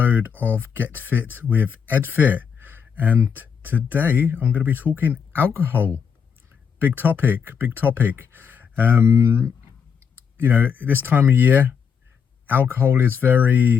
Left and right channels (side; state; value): right; quieter; 6.8 dB